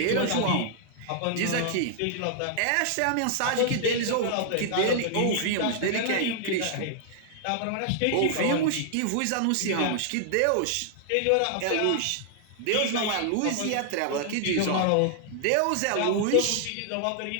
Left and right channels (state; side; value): different; both; correlation -0.01